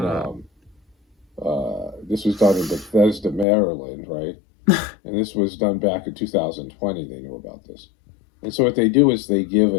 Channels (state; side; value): drops out; right; at 3.5 s